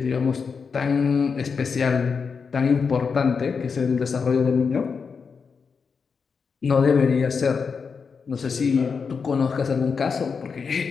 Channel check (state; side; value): quieter; right; 5.6 dB